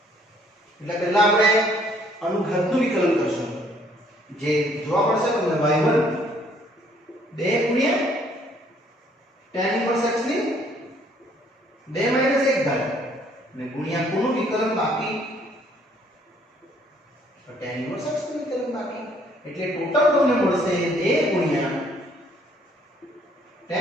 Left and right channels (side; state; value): both; normal; correlation 0.63